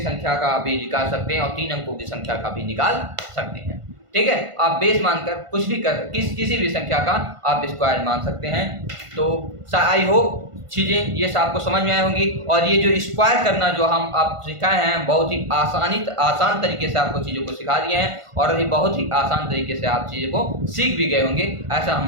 का भी निकाल सकते हैं और 3 अंकों की संख्या का भी निकाल सकते हैं। ठीक है, आप बेस मानकर कुछ भी किसी भी संख्या का आप स्क्वायर मान सकते हैं। तो आई होप चीज़ें ये आपको समझ में आई होंगी। और ये जो स्क्वायर करना जो हम आप सिखाए हैं, बहुत ही आसान तरीके से आपको चीज़ों को सिखा दिए हैं और ये बहुत ही आसान तरीके से आप चीज़ों को सीख भी गए होंगे, ऐसा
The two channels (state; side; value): late; left; 1.5 ms